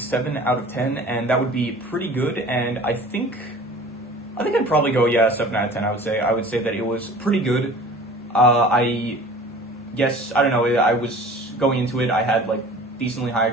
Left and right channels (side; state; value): both; normal; correlation 0.44